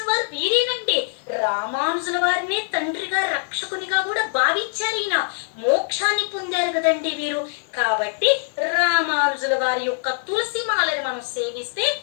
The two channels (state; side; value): silent; right; 62 dB below the other